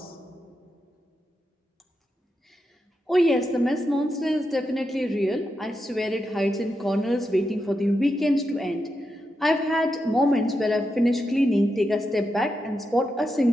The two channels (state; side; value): normal; both; correlation 0.86